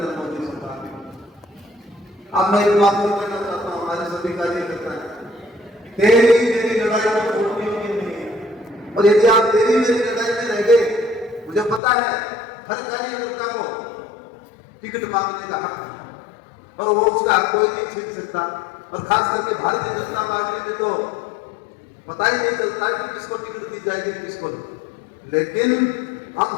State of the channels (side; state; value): right; drops out; at 11.8 s